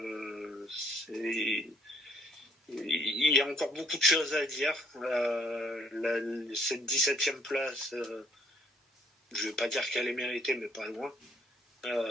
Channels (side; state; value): both; normal; correlation 0.66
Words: il y a encore beaucoup de choses à dire. Cette 17e place, je ne vais pas dire qu'elle est méritée, mais pas loin.